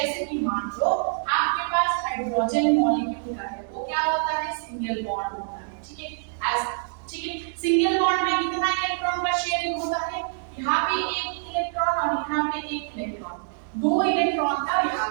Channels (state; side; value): silent; left; digital silence